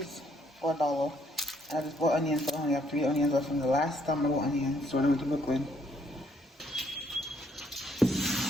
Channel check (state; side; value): normal; both; correlation 0.69